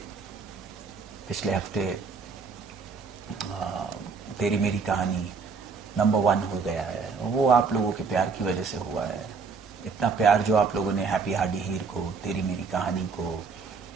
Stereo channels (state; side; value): quieter; left; 5.0 dB